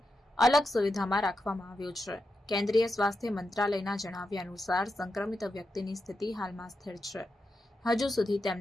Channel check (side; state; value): both; normal; correlation 0.87